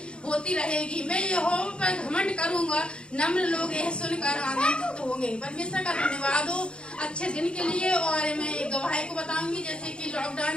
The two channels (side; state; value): right; late; 0.055 ms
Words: होती रहेगी। मैं यहोवा पर घमंड करूंगा, नम्र लोग यह सुनकर आनंदित होंगे। परमेश्वर का धन्यवाद हो अच्छे दिन के लिए। और मैं एक गवाही को बताऊंगी, जैसे कि लॉकडाउन